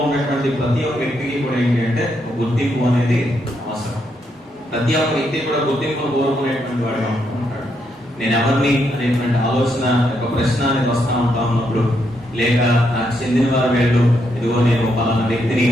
ఉన్నటువంటి ప్రతి ఒక్క వ్యక్తికి కూడా ఏంటి అంటే ఒక గుర్తింపు అనేది అవసరం. ప్రతి ఒక్క వ్యక్తి కూడా గుర్తింపును కోరుకునేటువంటి వాడుగా ఉంటాడు. నేను ఎవరిని అనేటువంటి ఆలోచన ఒక ప్రశ్న అనేది వస్తూ ఉంటా ఉన్నప్పుడు, లేక నాకు చెందిన వారు వీళ్ళు, ఇదిగో నేను పలానా వ్యక్తిని,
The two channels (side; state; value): both; normal; correlation 0.78